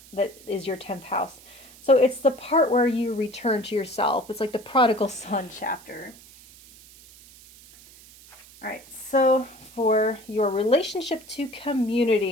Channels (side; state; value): right; noise; hiss, 22 dB below the sound